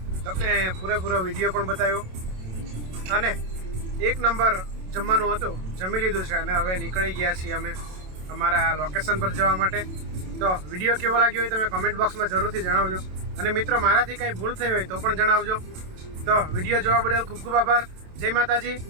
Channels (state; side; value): late; left; 27 ms